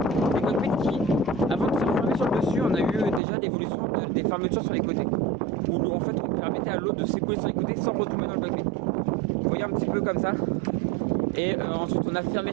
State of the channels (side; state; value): left; drops out; at 3.2 s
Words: des cockpits qui, avant de se fermer sur le dessus, on a eu déjà l'évolution des fermetures sur les côtés. Où en fait on permettait à l'eau de s'écouler sur les côtés sans retomber dans le cockpit. Vous voyez un petit peu comme ça. Et ensuite on a